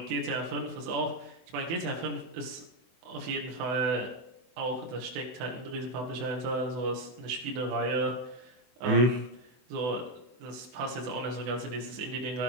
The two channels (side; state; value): left; late; 24 ms